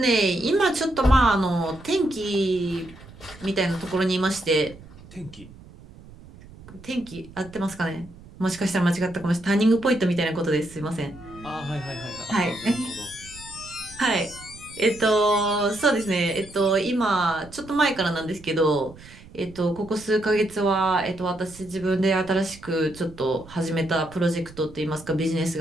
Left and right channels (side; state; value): right; noise; rumble, 20 dB below the sound